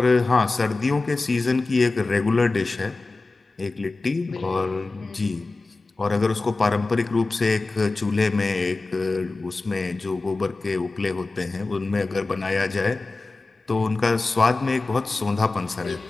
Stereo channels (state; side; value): quieter; right; 3.4 dB